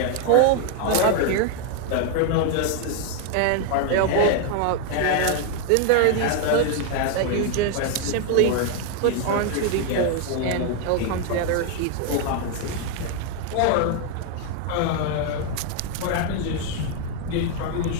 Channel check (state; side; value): different; both; correlation 0.00